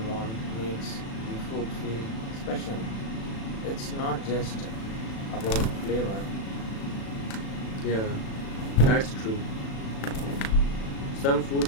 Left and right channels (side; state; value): right; late; 36 ms